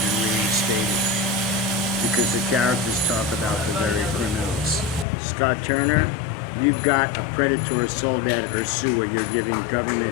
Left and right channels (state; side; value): drops out; right; at 5.1 s